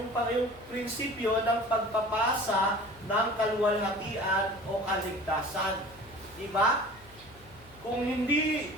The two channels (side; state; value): left; noise; hum, 23 dB below the sound